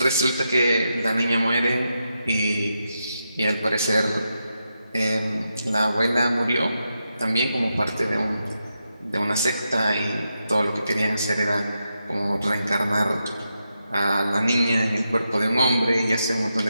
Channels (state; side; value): inverted; both; correlation -0.86